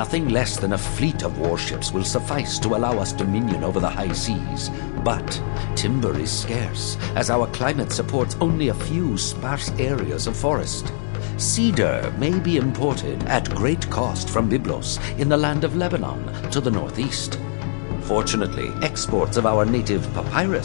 less than a fleet of warships will suffice to allow us dominion over the high seas. But timber is scarce, as our climate supports only a few sparse areas of forest. Cedar may be imported at great cost from Byblos in the land of Lebanon to the northeast. Fortunately, exports of our native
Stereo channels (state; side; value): silent; right; digital silence